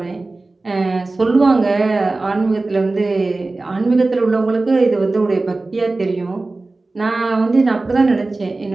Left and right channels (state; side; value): quieter; left; 3.3 dB